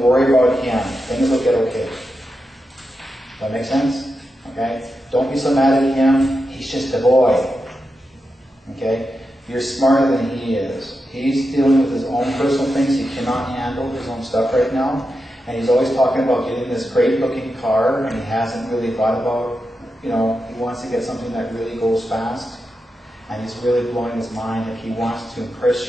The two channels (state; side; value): normal; both; correlation 0.88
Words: worry about him. Things will get okay. That make sense? Okay? Don't be so mad at him, he's just a boy. Okay? You're smarter than he is. He's dealing with his own personal things, he cannot handle his own stuff right now. And he's always talking about getting this great looking car, and he hasn't really thought about, he wants to get something that really goes fast. And he's really blowing his mind, like he wants to